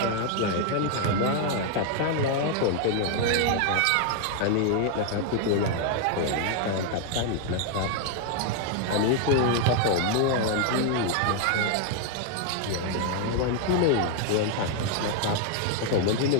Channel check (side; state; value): both; different; correlation 0.00